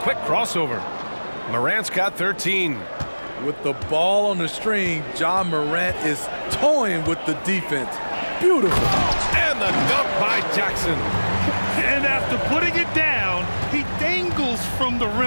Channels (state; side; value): inverted; both; correlation -1.00